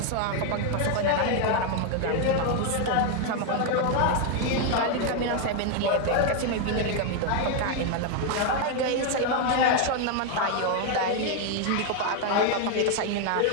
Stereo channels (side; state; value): both; different; correlation 0.01